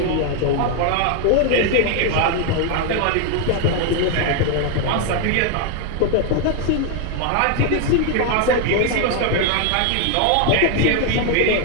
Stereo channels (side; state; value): both; different; correlation 0.00